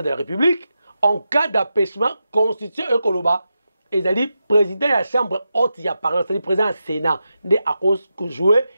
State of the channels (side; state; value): both; inverted; correlation -0.89